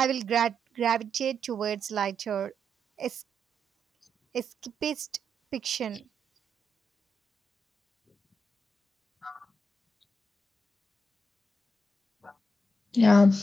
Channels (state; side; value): normal; both; correlation 0.83